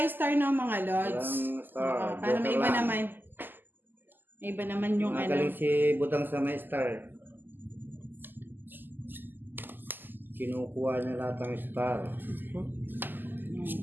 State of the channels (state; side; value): late; left; 0.091 ms